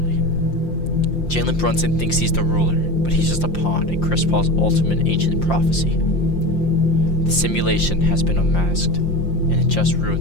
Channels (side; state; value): right; late; 5.7 ms